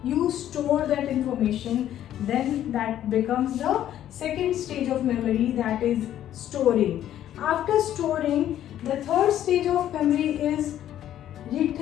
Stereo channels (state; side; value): quieter; right; 11.6 dB